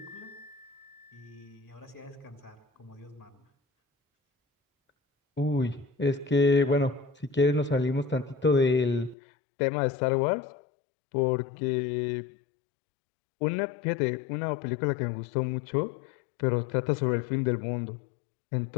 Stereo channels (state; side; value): drops out; right; at 9.2 s